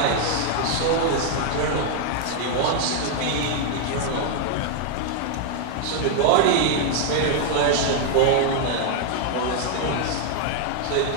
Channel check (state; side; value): different; both; correlation 0.00